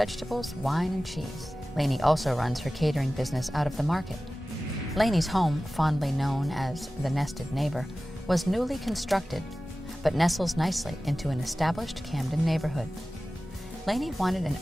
wine, and cheese. Lani also runs her catering business out of the market. Lani's home, fondly known as the nested neighbor, was newly constructed, but nestles nicely into an established Camden neighborhood. Lani wanted an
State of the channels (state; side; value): normal; both; correlation 0.96